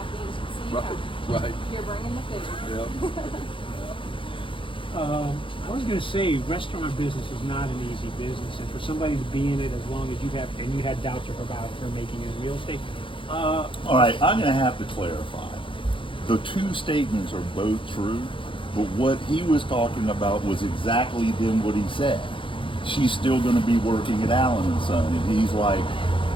As you see, Right. you're bringing the food. Yeah. I was going to say, restaurant business is not an easy business, and for somebody to be in it as long as you have, and you had doubts about her making it real estate. All right, I'm going to have to clarify. The 2 statements are both true, but what he was talking about was exactly then what he said. She's still going to be working at Allen & Son, and he's like,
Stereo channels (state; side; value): late; right; 0.25 ms